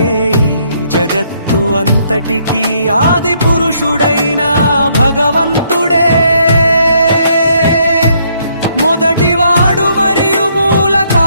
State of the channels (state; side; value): inverted; both; correlation -0.70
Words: ఈ జగత్తు అంతటికీ ఆది పురుషుడైన భగవంతుడే మొదటివాడు మరియు మూల